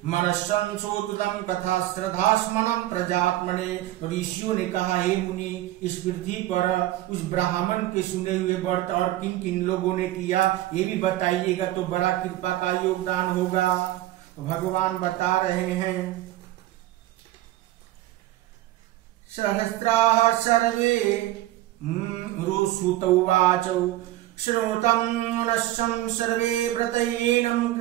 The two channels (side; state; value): left; quieter; 15.5 dB